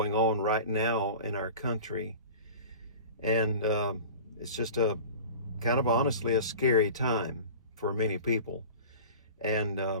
on right now in our country. And it's just kind of honestly a scary time for many people,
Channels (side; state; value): both; inverted; correlation -0.37